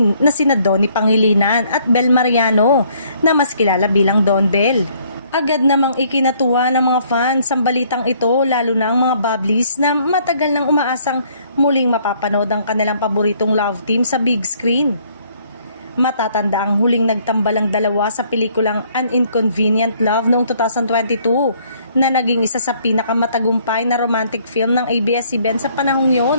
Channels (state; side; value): inverted; both; correlation -0.63